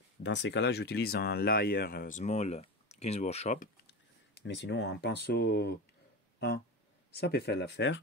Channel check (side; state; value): both; normal; correlation 0.23